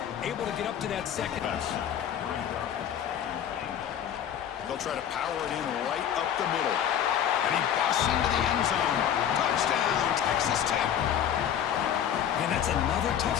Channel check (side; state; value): right; quieter; 9.5 dB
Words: able to get up to that second. They'll try to power it in right up the middle. And he busts into the end zone. Touchdown, Texas Tech. And that's another